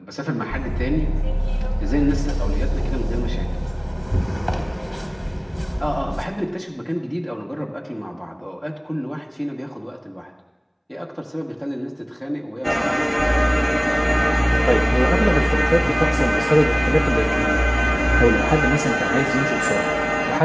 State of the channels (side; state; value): both; identical; correlation 1.00